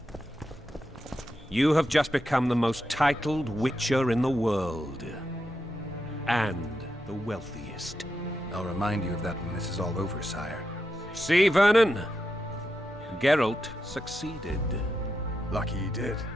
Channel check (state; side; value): normal; both; correlation 0.86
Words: You have just become the most titled Witcher in the world. And the wealthiest. I'll remind you of that when this is all over, sire. See, Vernon? Geralt succeeded. Lucky he did.